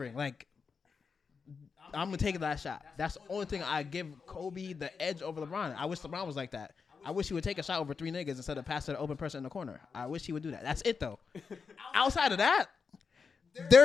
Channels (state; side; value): quieter; right; 5.4 dB